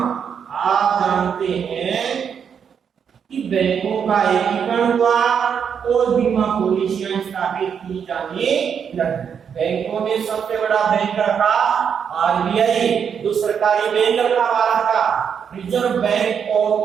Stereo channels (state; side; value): quieter; left; 7.3 dB